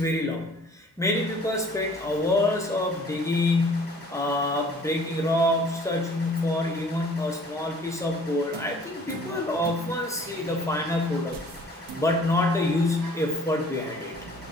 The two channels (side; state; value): both; normal; correlation 0.53